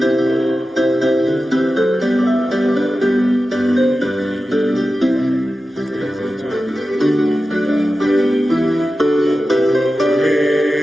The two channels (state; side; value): normal; both; correlation 0.93